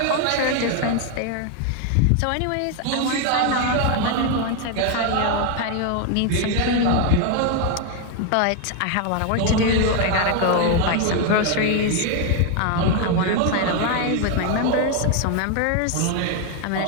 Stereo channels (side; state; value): both; different; correlation 0.01